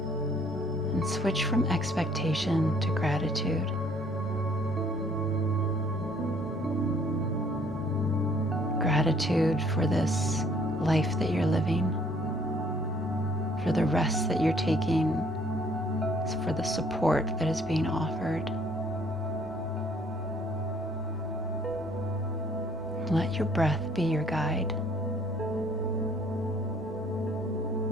And switch from expectation to gratitude. Gratitude for this life that you're living, for the rest that you're taking, for the support that is being offered. Let your breath be your guide.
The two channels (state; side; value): normal; both; correlation 0.61